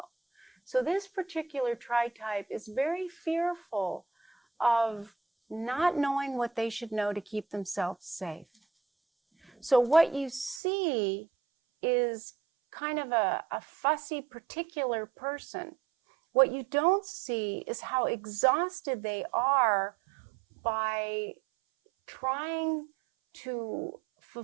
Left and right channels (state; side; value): drops out; left; at 10.6 s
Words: So this particular tritype is very fearful of not knowing what they should know to keep themselves safe. So what you see is kind of a fussy particular person. What you don't see is how exhausted they are by trying to